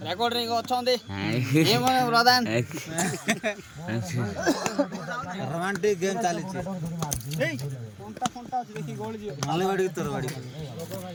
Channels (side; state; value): both; identical; correlation 1.00